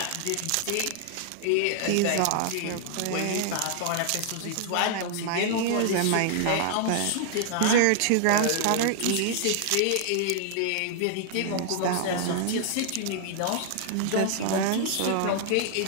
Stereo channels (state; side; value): different; both; correlation 0.00